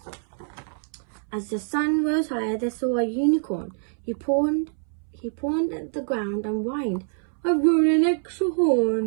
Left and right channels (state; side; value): silent; left; 62 dB below the other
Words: As the sun rose higher, they saw a unicorn. He pawned at the ground and whined, "I've grown an extra